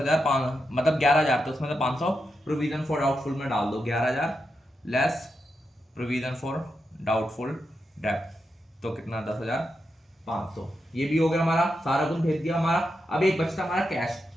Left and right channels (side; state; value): both; normal; correlation 0.86